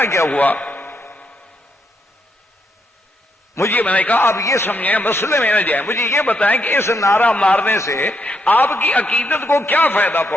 کیا ہوا؟ مجھے میں نے کہا آپ یہ سمجھیں، مسئلے میں نہ جائیں، مجھے یہ بتائیں کہ اس نعرہ مارنے سے آپ کی عقیدت کو کیا فائدہ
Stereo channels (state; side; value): normal; both; correlation 0.78